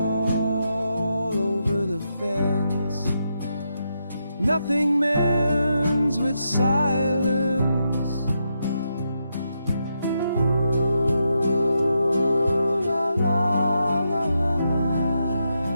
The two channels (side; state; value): both; inverted; correlation -0.83